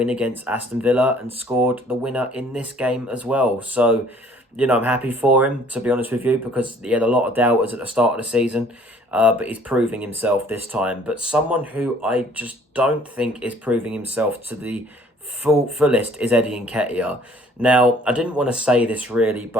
against Aston Villa and scored the winner in this game as well. So, you know, I'm happy for him, to be honest with you, because he had a lot of doubters at the start of the season, but he's proving himself this time. But someone who I just don't think is proving himself to the fullest is Eddie Nketiah. Now, I didn't want to say this really,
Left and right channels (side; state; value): both; normal; correlation 0.57